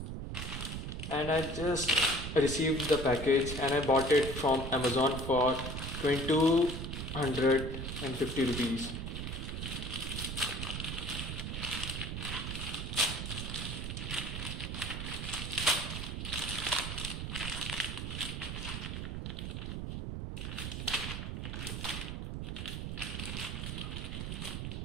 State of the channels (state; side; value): noise; right; rumble, 4 dB below the sound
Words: And I just received the package and I bought it from Amazon for 2250 rupees.